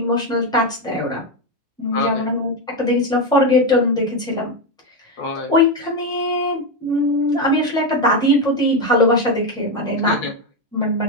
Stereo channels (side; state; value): both; normal; correlation 0.09